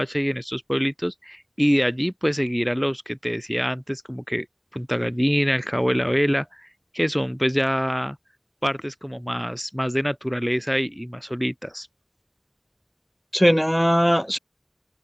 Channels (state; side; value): identical; both; correlation 1.00